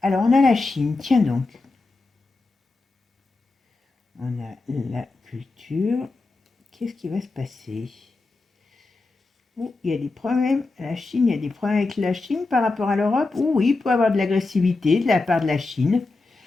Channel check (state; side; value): quieter; right; 3.5 dB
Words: Alors, on a la Chine, tiens donc. On a la culture. Qu'est-ce qui va se passer? Il y a des problèmes. La Chine, il y a des problèmes avec la Chine par rapport à l'Europe. Oui, il peut y avoir de l'agressivité de la part de la Chine.